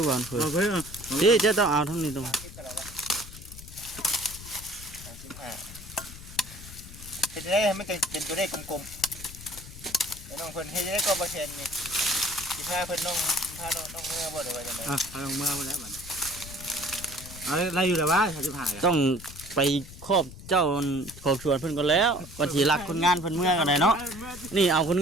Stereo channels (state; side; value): noise; left; rumble, 15 dB below the sound